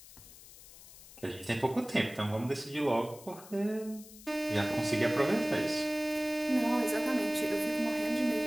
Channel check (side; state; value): left; noise; hiss, 19 dB below the sound